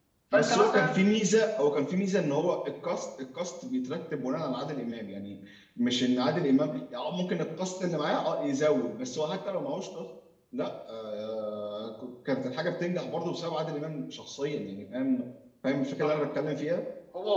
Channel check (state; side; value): identical; both; correlation 1.00